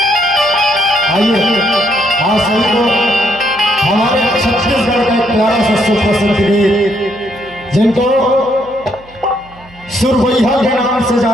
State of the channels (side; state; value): right; noise; hum, 24 dB below the sound